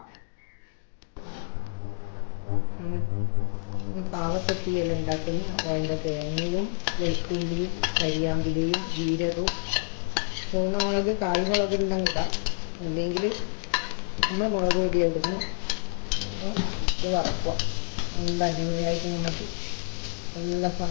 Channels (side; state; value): right; silent; digital silence